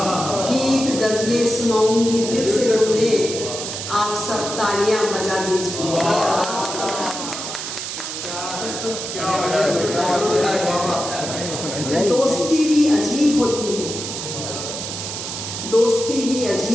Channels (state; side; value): noise; right; hiss, 6 dB below the sound